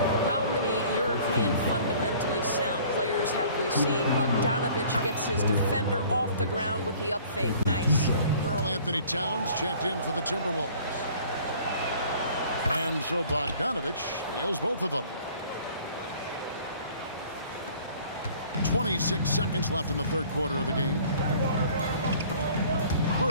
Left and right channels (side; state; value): both; inverted; correlation -0.52